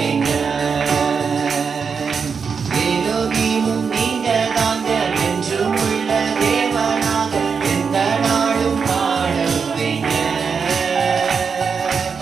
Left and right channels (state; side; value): quieter; left; 5.8 dB